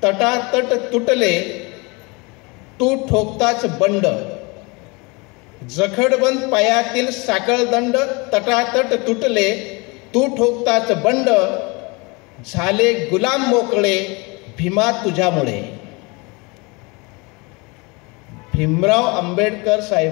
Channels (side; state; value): right; quieter; 27.6 dB